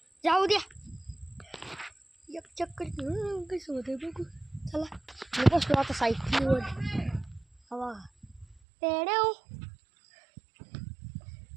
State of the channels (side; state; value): left; drops out; at 8.6 s